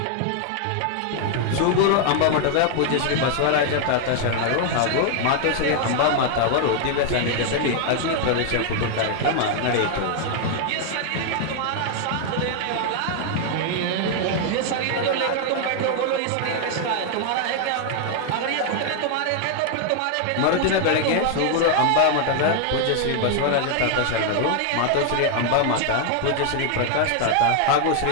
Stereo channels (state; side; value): different; both; correlation 0.00